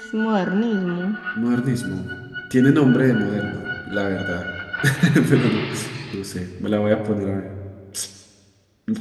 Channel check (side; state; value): both; identical; correlation 1.00